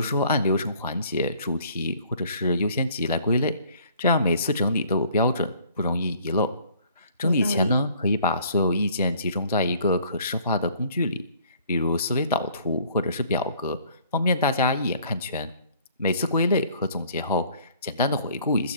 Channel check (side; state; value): both; inverted; correlation -0.57